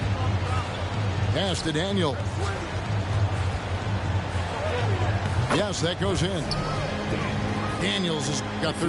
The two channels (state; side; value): identical; both; correlation 1.00